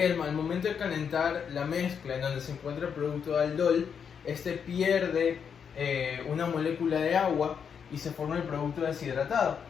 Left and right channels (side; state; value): right; quieter; 7.1 dB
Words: momento de calentar la mezcla en donde se encuentra el producto de aldol, este pierde una molécula de agua y se forma el producto deshidratado,